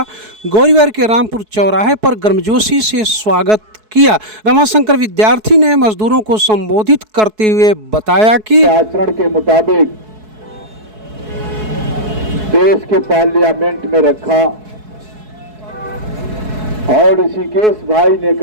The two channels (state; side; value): late; left; 4.7 ms